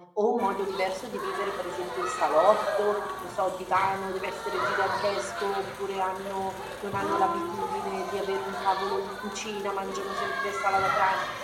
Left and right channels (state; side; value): identical; both; correlation 1.00